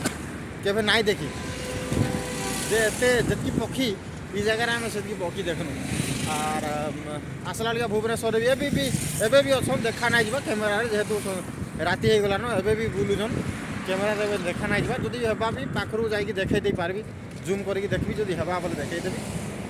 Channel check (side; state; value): both; identical; correlation 1.00